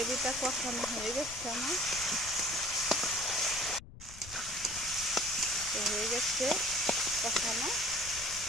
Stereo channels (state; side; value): noise; left; rumble, 16 dB below the sound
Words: কষানো হয়ে গেছে আমার, তো হয়ে গেছে কষানো।